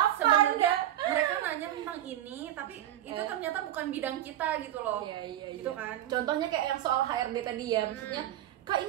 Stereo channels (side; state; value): left; quieter; 12.7 dB